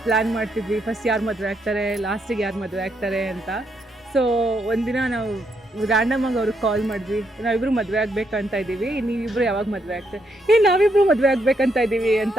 ಪ್ಲ್ಯಾನ್ ಮಾಡ್ತಿದ್ವಿ, ಫಸ್ಟ್ ಯಾರು ಮದುವೆ ಆಗ್ತಾರೆ, ಲಾಸ್ಟಿಗೆ ಯಾರು ಮದುವೆ ಆಗ್ತಾರೆ ಅಂತ. ಸೊ ಒಂದಿನ ನಾವು ರ್ಯಾಂಡಮಾಗಿ ಅವ್ರಿಗೆ ಕಾಲ್ ಮಾಡಿದ್ವಿ, ನಾವಿಬ್ಬರು ಮದುವೆ ಆಗಬೇಕಂತ ಇದ್ದೀವಿ, ನೀವಿಬ್ಬರು ಯಾವಾಗ ಮದುವೆ ಆಗ್ತಾರೆ? ನಾವಿಬ್ಬರು ಮದುವೆ ಆಗಬೇಕಂತ ಇದ್ದೀವಿ ಅಂತ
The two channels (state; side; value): normal; both; correlation 0.77